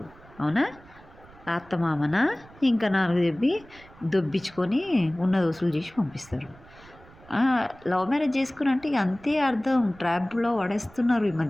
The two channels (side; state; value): right; noise; rumble, 24 dB below the sound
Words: అవునా? అత్తమామన ఇంకా 4 చెప్పి దొబ్బించుకొని ఉన్నది వసూలు చేసి పంపిస్తారు. లవ్ మ్యారేజ్ చేసుకుని ఇక అంతే అర్థం. ట్రాప్లో పడేస్తున్నారు ఈ